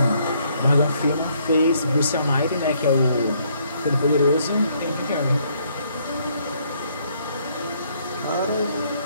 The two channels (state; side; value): inverted; both; correlation -0.69